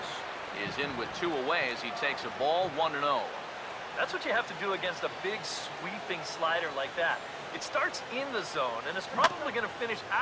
is in with 2 away as he takes a ball 1-0. That's what you have to do against a big sweeping slider like that. It starts in the zone, and it's probably going to finish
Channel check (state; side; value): identical; both; correlation 1.00